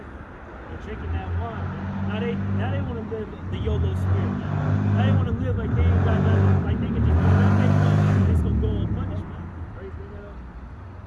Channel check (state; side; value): identical; both; correlation 1.00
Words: They're drinking that wine, man. Now they want to live the YOLO spirit, man. Now they want to live like they ain't got nothing, like they can just do whatever they want, and it's gonna go unpunished, man. Right? Bring that up.